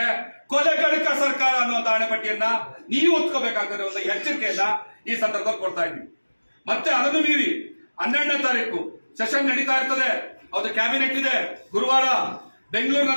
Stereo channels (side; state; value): both; inverted; correlation -1.00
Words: ಕೊಲೆಗಡಕ ಸರ್ಕಾರ ಅನ್ನುವಂತ ಹಣೆಪಟ್ಟಿಯನ್ನ ನೀವು ಹೊತ್ಕೋಬೇಕಾಗ್ತದೆ ಒಂದು ಎಚ್ಚರಿಕೆಯನ್ನ ಈ ಸಂದರ್ಭದಲ್ಲಿ ಕೊಡ್ತಾ ಇದ್ದೀವಿ. ಮತ್ತೆ ಅದನ್ನು ಮೀರಿ 12ನೇ ತಾರೀಕು ಸೆಷನ್ ನಡೀತಾ ಇರ್ತದೆ, ಅದು ಕ್ಯಾಬಿನೆಟ್ ಇದೆ. ಗುರುವಾರ